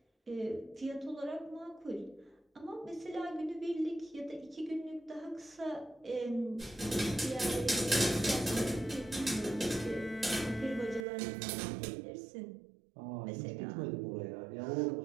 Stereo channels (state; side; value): drops out; left; at 11.1 s